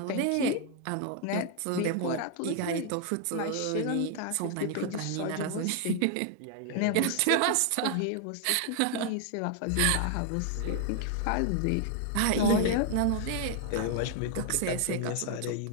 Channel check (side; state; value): both; different; correlation 0.00